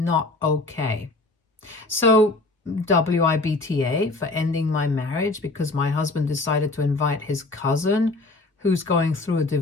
okay. So WIBTA for ending my marriage because my husband decided to invite his cousin who's going through a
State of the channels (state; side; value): quieter; right; 3.2 dB